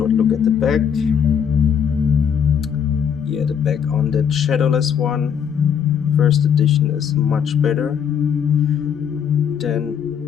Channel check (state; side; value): quieter; right; 7.8 dB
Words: look at the back. Yeah, the back on that Shadowless one, first edition, is much better than